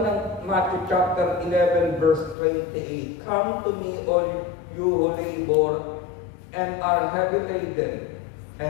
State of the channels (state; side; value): drops out; right; at 2.4 s